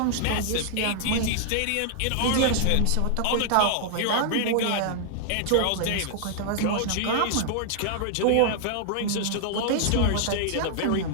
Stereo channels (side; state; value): both; different; correlation -0.01